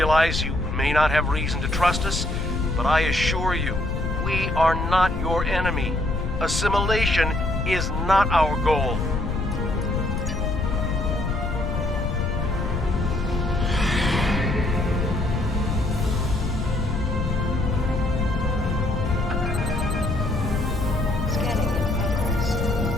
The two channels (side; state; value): left; noise; rumble, 2 dB below the sound